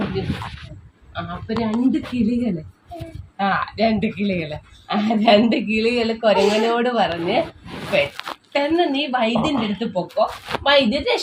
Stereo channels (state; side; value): identical; both; correlation 1.00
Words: അപ്പൊ രണ്ട് കിളികള് കുരങ്ങനോട് പറഞ്ഞ് പെട്ടെന്ന് നീ വൈദ്യന്റെ അടുത്ത് പൊക്കോ, വൈദ്യൻ